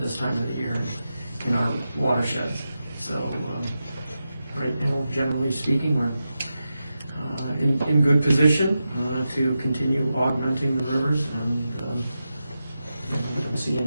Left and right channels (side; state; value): both; inverted; correlation -0.90